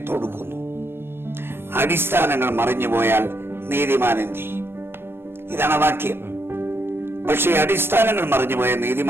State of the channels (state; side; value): late; left; 0.11 ms